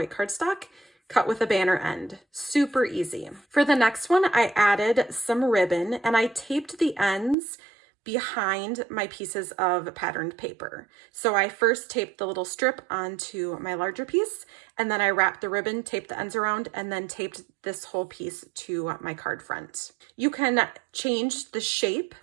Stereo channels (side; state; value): left; drops out; at 7.4 s